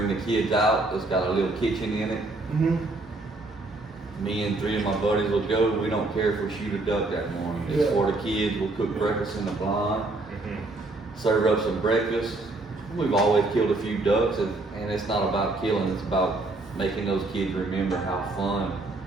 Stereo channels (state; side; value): quieter; left; 3.0 dB